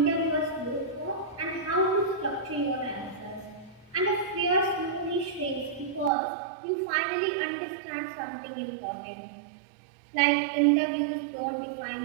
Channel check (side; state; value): left; drops out; at 6.1 s